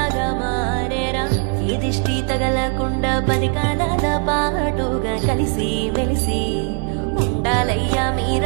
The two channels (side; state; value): left; quieter; 38.8 dB